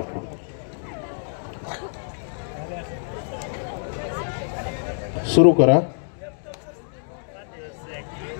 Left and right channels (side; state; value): right; silent; digital silence